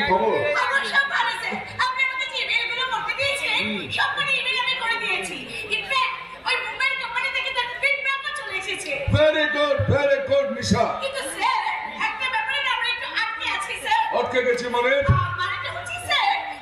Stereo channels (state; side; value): identical; both; correlation 1.00